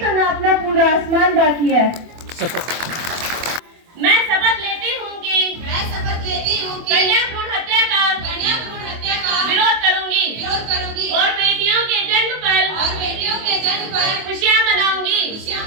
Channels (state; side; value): late; left; 24 ms